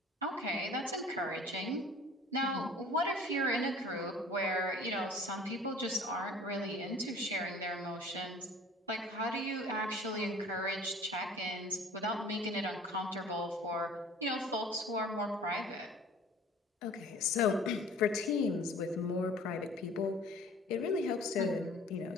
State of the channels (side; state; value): both; normal; correlation 0.48